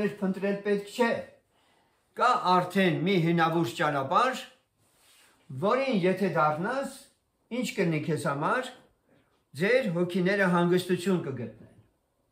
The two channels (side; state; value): both; identical; correlation 1.00